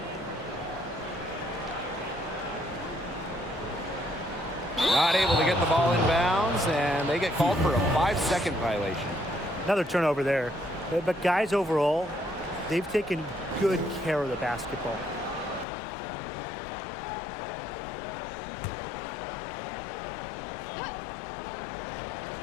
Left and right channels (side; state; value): right; drops out; at 15.7 s